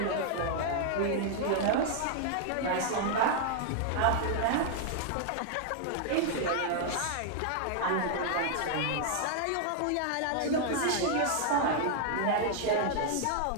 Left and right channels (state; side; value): different; both; correlation 0.00